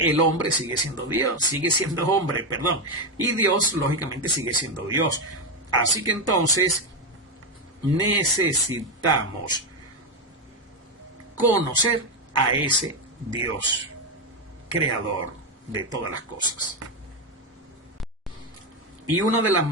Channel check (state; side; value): normal; both; correlation 0.08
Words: hombre sigue siendo Dios, sigue siendo hombre, perdón. Y Dios, lógicamente, sigue siendo Dios. Así que entonces necesitamos conocer a ese Dios, creador de todas las cosas. Y una